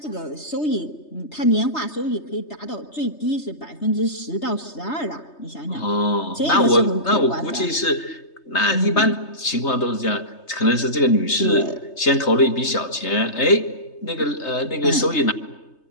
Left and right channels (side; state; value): right; late; 3.3 ms